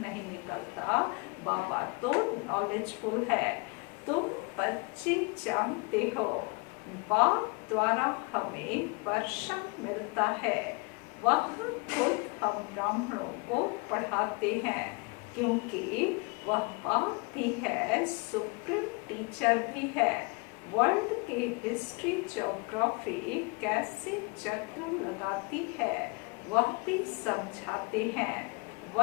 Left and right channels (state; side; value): quieter; right; 29.0 dB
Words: नहीं निकलता। बाबा तो नॉलेजफुल है। तुम बच्चे जानते हो बाप द्वारा हमें वर्षा मिलता है, वह खुद हम ब्राह्मणों को पढ़ाते हैं, क्योंकि वह बाप भी है, सुप्रीम टीचर भी है। वर्ल्ड के हिस्ट्री ज्योग्राफी कैसे चक्र लगाती है वह भी समझाते हैं।